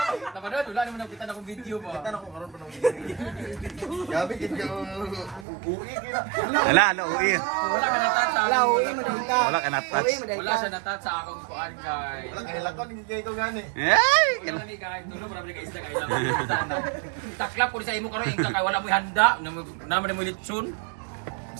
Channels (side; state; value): left; drops out; at 5.5 s